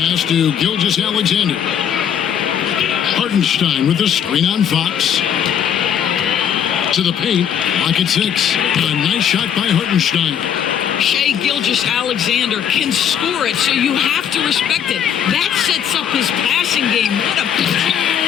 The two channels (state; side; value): quieter; right; 8.8 dB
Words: to Gilgeous-Alexander. Hartenstein with the screen on Fox. To the paint, lock at 6. A nice shot by Hartenstein. Shai Gilgeous-Alexander can score it, so you have to respect it. That sets up his passing game. What a...